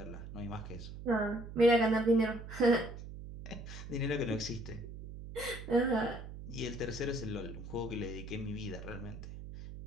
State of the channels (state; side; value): noise; right; hum, 11 dB below the sound